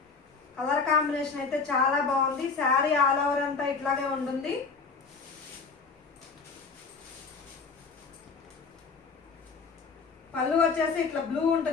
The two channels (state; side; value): quieter; right; 4.8 dB